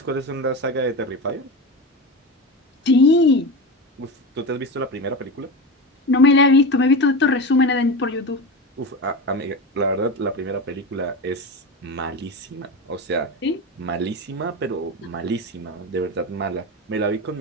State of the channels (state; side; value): normal; both; correlation 0.23